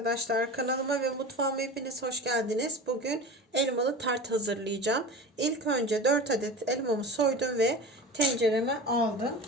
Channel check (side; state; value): both; normal; correlation 0.33